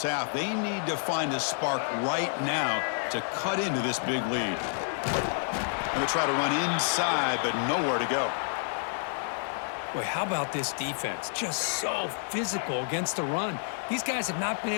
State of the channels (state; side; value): silent; right; 58 dB below the other